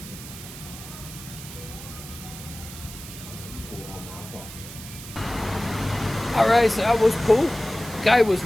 Alright, so that was cool. Guy was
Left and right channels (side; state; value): right; noise; hiss, 13 dB below the sound